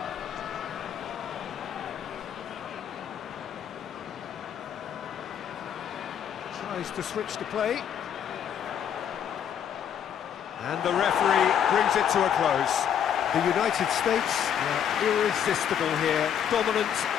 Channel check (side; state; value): right; quieter; 9.0 dB